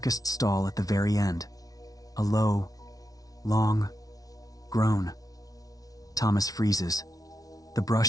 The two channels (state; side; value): late; right; 0.18 ms